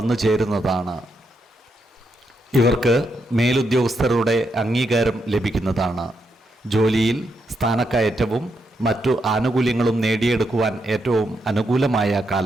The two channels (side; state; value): both; normal; correlation 0.81